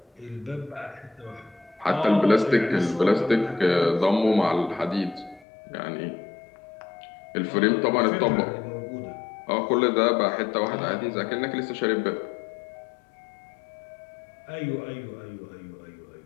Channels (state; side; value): drops out; right; at 5.5 s